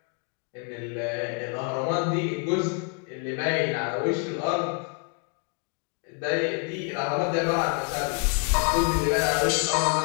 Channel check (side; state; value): right; quieter; 38.4 dB